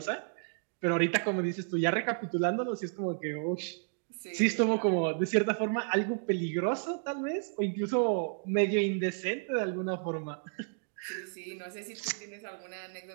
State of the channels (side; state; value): left; silent; digital silence